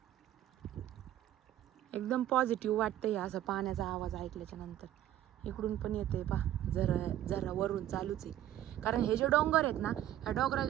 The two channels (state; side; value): quieter; left; 12.4 dB